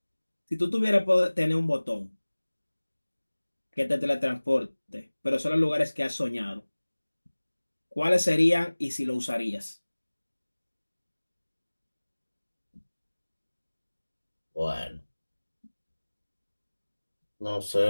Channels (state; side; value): inverted; both; correlation -1.00